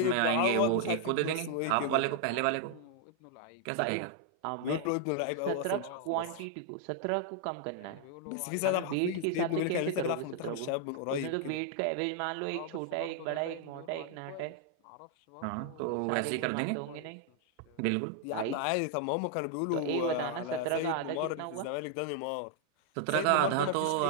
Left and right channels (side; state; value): both; different; correlation 0.00